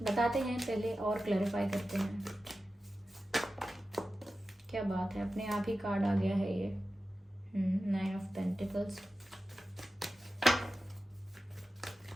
बताते हैं पहले और क्लैरिफाई करते हैं क्या बात है। अपने आप ही कार्ड आ गया है ये, 9 of pentacles.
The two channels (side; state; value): both; normal; correlation 0.93